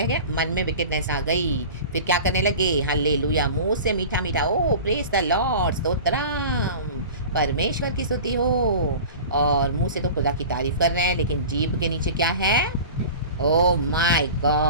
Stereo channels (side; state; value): both; inverted; correlation -0.36